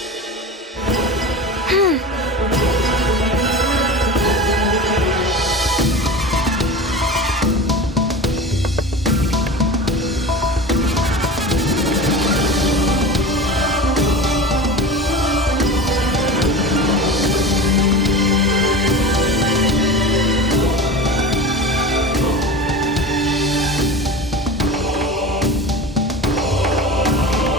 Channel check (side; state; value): both; normal; correlation 0.31